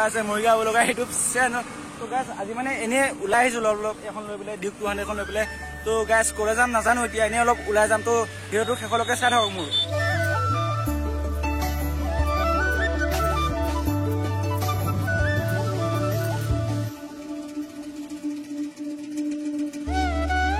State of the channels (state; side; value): identical; both; correlation 1.00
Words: আছে মৰিগাঁও লগা ইউটিউব চেনেল। তো গাইছ আজি মানে এনেই ওলাই আহিছোঁ অলপ এখন লৈ পেলাই ডিউক 200 এখন লৈ পেলাই। তো গাইছ ক'লে যাম নাজানো, এতিয়া এনেই অলপ ওলাই যাম। তো ভিডিঅ'টো শেষলৈকে চাই থাকক মোৰ।